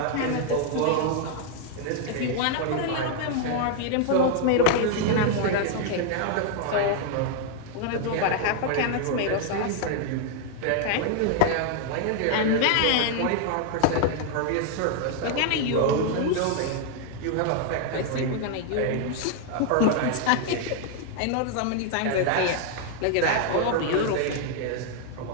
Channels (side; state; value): both; different; correlation 0.00